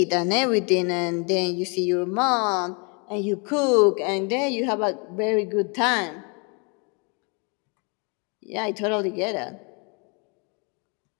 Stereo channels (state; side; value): quieter; right; 34.0 dB